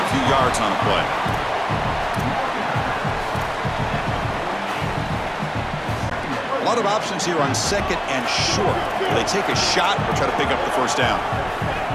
few yards on a play. A lot of options here on 2nd and short. Will they take a shot or try to pick up the first down?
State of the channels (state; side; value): identical; both; correlation 1.00